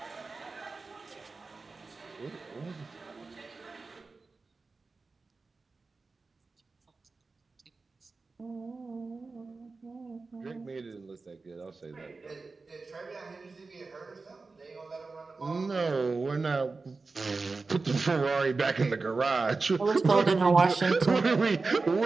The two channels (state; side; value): quieter; left; 4.0 dB